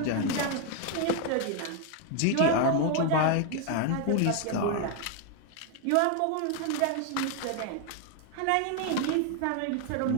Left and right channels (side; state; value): both; different; correlation 0.01